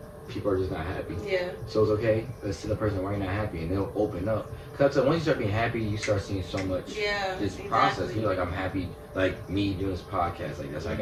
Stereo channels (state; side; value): identical; both; correlation 1.00